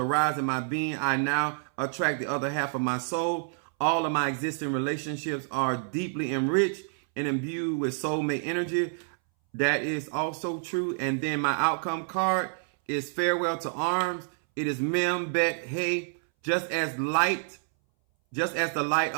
my being, I now attract the other half of my soul. All of my existing relationships are deeply enriched and imbued with soulmate energy. That is also true. And then my outcome card is farewell to arms. It is Mem Bet Hey. Just as the light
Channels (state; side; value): silent; left; 59 dB below the other